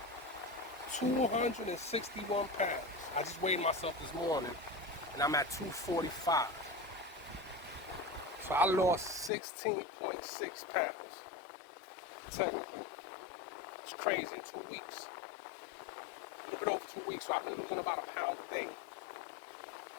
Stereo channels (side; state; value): right; drops out; at 9.3 s